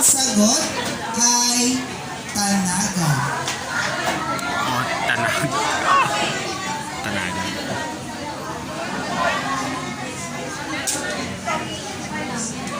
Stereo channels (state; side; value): identical; both; correlation 1.00